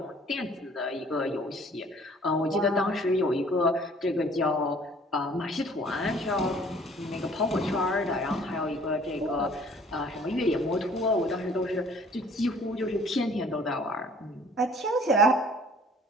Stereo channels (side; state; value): both; normal; correlation 0.54